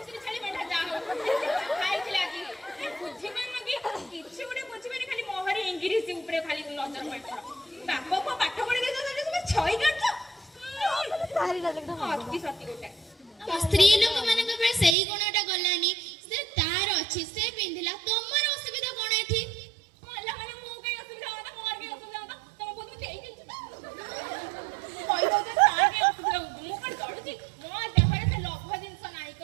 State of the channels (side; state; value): left; drops out; at 15.0 s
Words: ଛେଳି ମେଣ୍ଢା ଯାହା ହଉ ଖାଇଥିଲା ଆଜି। ବୁଝିପାରୁନ କି? କିଛି ଗୋଟେ ବୁଝିପାରି, ଖାଲି ମୋହରି ଇଂଲିଶ ଉପରେ ଖାଲି ନଜର ମାରିଛ। ବାପ ପୁଅ ପାଠ ପଢି ଦେଇଛନ୍ତି, ତୁମେ ଛଇ କାଟୁଛ। ଅତି ସତି ଗୋଟେ ସ୍ତ୍ରୀ ଲୋକମାନଙ୍କ ଉପରେ ସେଇ ଗୁଣଟା ଗଲାନି। ସେ ତାର ଅଛି, ସେ ପିନ୍ଧିଲା, ତମର ଅସୁବିଧା କଣ ଏଠି? ମଲା ମାନେ ମୁଁ କାଇଁ ଅସୁବିଧା ହବ? ମୋର କାଇଁ ଅସୁବିଧା ହବ? ତମ ବୋଧେ ଦେଇଦେଇଛୁ ତ କହିଦଉଛ ତାର କାଇଁ ଅସୁବିଧା ହଉଛି? ମୁଁ କଣ ଜଳୁଛି? ମୋ ଦେହରେ ସେ ଲୋଭ ଜିନିଷ ନାହିଁ,